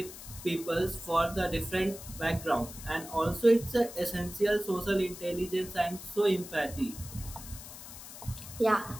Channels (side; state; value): left; noise; hiss, 13 dB below the sound